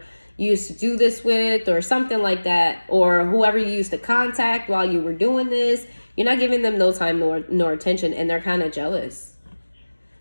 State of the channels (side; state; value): both; inverted; correlation -1.00